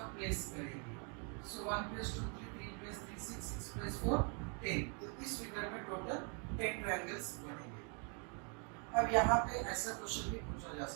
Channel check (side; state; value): left; quieter; 37.8 dB